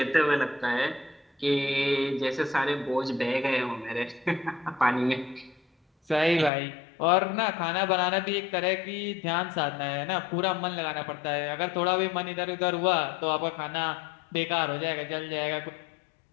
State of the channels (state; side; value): drops out; right; at 6.5 s